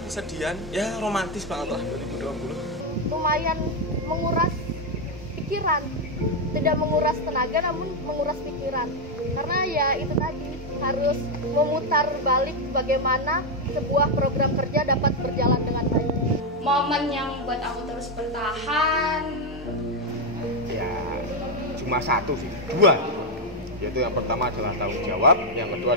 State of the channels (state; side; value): normal; both; correlation 0.03